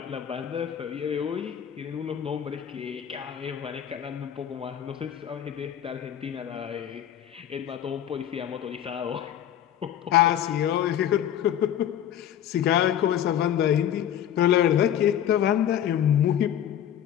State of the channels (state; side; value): quieter; right; 10.4 dB